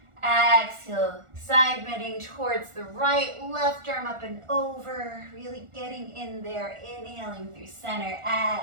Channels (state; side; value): late; left; 1.4 ms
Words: exhale, side bending towards the right, left arm up and over, really getting in there, inhaling through center,